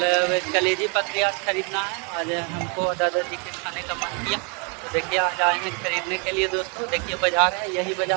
कलेजी पतली आज खरीदना है। आज हमको दादाजी के खाने का मन किया, तो देखिए आज आए हैं खरीदने के लिए दोस्तों। देखिए बाजार है, यही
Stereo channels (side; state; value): left; quieter; 35.1 dB